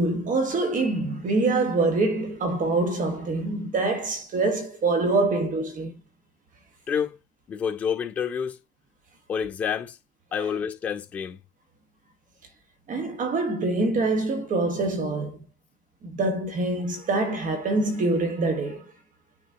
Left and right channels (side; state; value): both; normal; correlation 0.42